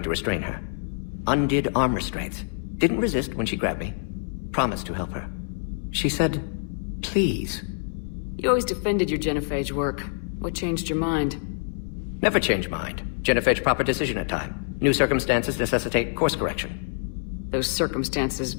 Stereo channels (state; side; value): silent; right; digital silence